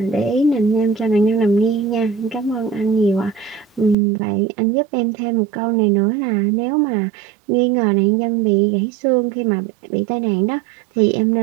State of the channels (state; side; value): drops out; left; at 4.0 s